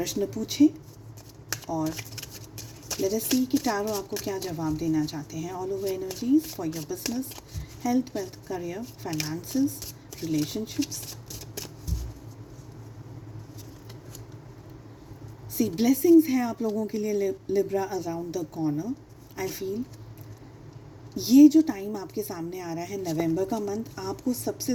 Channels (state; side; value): identical; both; correlation 1.00